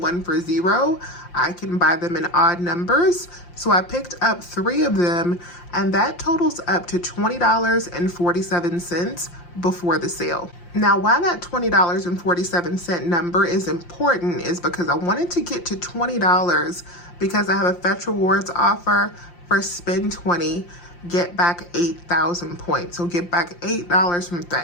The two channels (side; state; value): right; late; 5.7 ms